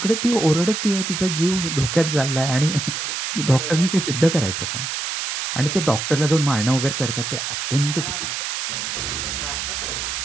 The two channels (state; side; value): noise; right; hiss, 3 dB below the sound